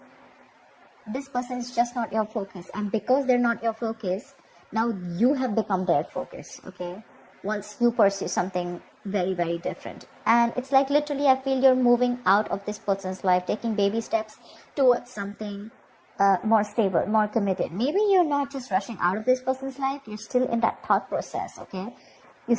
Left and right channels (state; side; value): identical; both; correlation 1.00